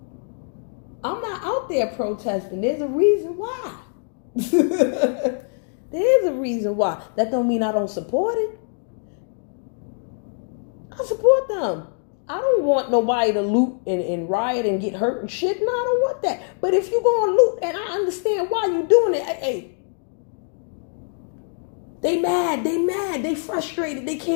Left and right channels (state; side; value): silent; right; 63 dB below the other